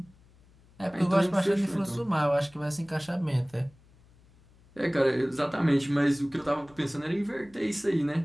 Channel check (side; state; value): left; noise; hum, 28 dB below the sound